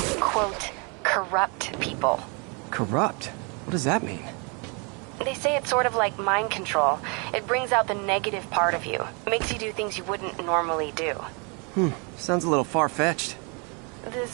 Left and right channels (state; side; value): quieter; left; 33.6 dB